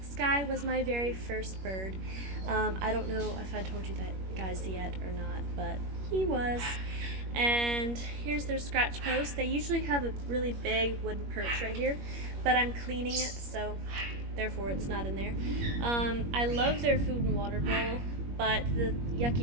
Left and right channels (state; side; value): late; left; 21 ms